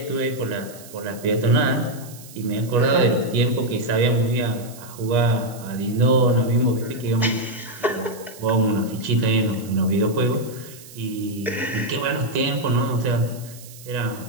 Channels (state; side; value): noise; right; hiss, 18 dB below the sound